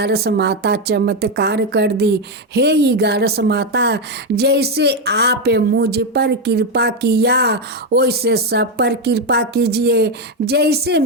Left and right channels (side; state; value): both; normal; correlation 0.07